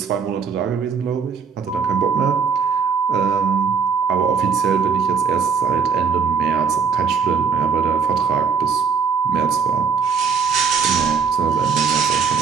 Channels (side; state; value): left; quieter; 5.9 dB